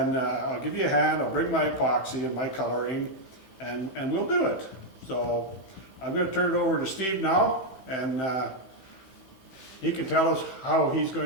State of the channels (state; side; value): late; right; 15 ms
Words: I'll give you a hand, I'll bring my epoxy and my coloring, and we'll do it. So I'm going to turn it over to Steve now, and he can tell us how he's